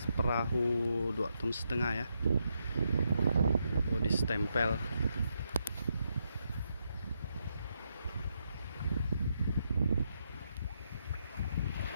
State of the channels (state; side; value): inverted; both; correlation -0.81